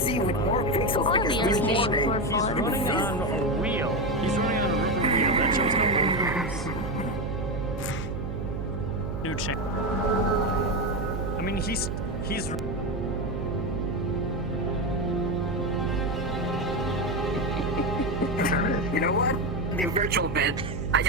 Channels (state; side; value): noise; right; hum, 5 dB below the sound